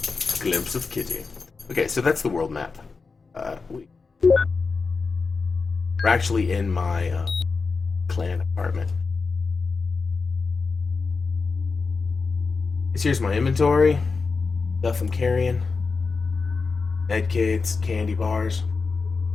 Glimpse of Kitty. Okay, so that's the world map. We're actually in my clan apartment. Here's my inventory. Stuff I'm carrying. Med kits, candy bars.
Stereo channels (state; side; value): quieter; right; 4.5 dB